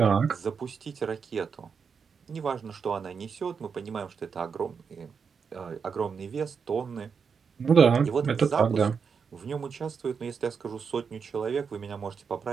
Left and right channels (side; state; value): left; quieter; 6.0 dB